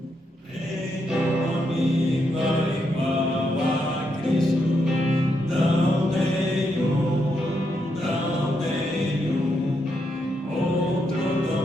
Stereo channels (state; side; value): normal; both; correlation 0.80